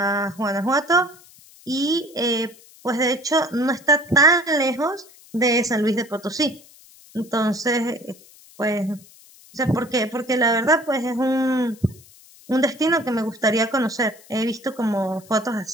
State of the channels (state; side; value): noise; left; hiss, 24 dB below the sound